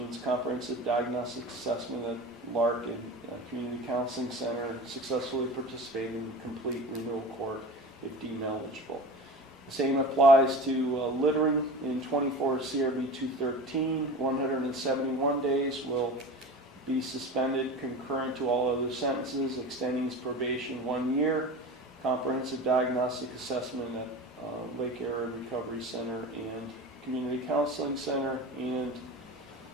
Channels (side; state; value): both; normal; correlation 0.33